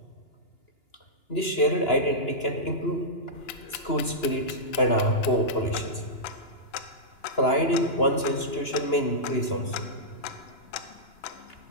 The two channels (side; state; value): right; late; 2.9 ms